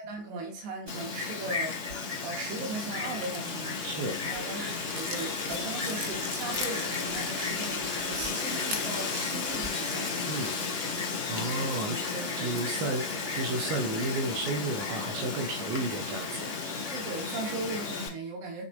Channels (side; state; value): left; late; 19 ms